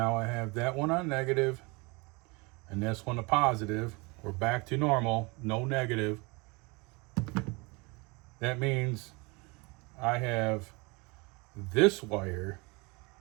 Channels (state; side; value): quieter; left; 27.5 dB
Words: I have that one on negative and this one a positive. We're back to normal, no negative. That means I have this wire